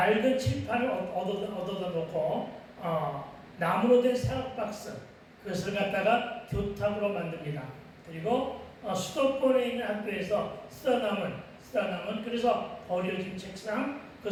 칠판을 얻어다 놓고 나무로 된 사각박스 그것을 갖다가 교탁으로 만듭니다. 그리고 수도권에 있는 학교에서 쓰다 남은 그래서 버려진 책상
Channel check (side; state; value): both; identical; correlation 1.00